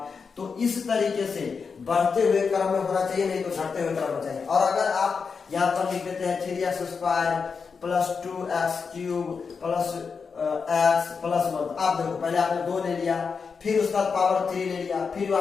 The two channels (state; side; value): quieter; right; 5.5 dB